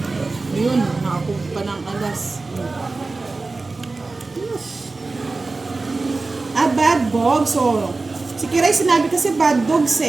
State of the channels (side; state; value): left; quieter; 3.6 dB